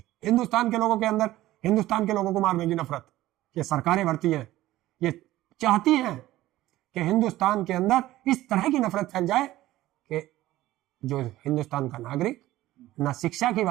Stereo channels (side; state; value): left; quieter; 15.8 dB